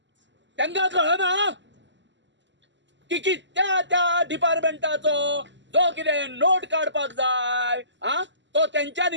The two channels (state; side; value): late; left; 0.53 ms